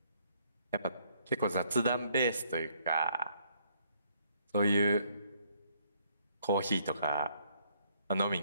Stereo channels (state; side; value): inverted; both; correlation -0.68